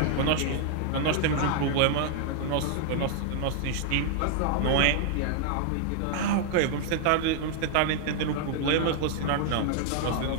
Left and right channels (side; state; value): both; different; correlation 0.00